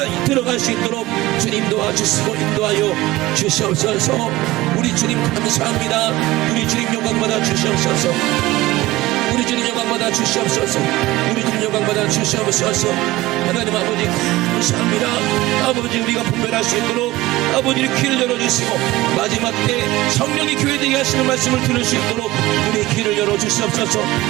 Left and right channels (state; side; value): quieter; left; 18.0 dB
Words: 들어갈 수 있도록 주님 도와주시고 인도하여 주시옵소서. 우리 주님 감사합니다. 우리 주님 영광받아 주시옵소서. 우리 주님 영광받아 주시옵소서. 우리 주님 영광받아 주시옵소서. 하나님 아버지 감사합니다. 아버지 우리가 분별할 수 있도록 아버지의 귀를 열어주시고 마지막 때 성령이 교회되게 하시는 말씀을 들을 수 있도록 우리 귀를 열어주시옵소서.